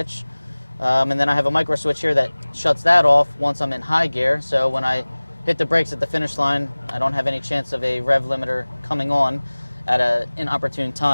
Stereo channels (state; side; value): inverted; both; correlation -1.00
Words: And then I have a micro switch here that shuts that off once I'm in high gear. So when I hit the brakes at the finish line, I don't have any chance of a rev limiter coming on at an inopportune